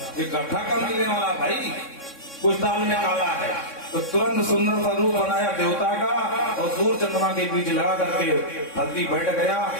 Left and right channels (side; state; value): right; late; 3.6 ms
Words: ये गड्ढा कब मिलने वाला भाई, कुछ दाल में काला है। तो तुरंत सुंदर सा रूप बनाया देवता का और सूर्य चंद्रमा के बीच लगा करके हल्दी बैठ गया,